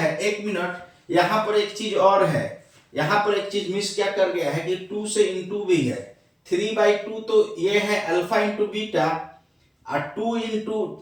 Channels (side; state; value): both; identical; correlation 1.00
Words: एक मिनट, यहाँ पर एक चीज और है, यहाँ पर एक चीज मिस क्या कर गया है कि 2 से इंटू भी है, 3/2 तो ये है अल्फा इंटू बीटा, और 2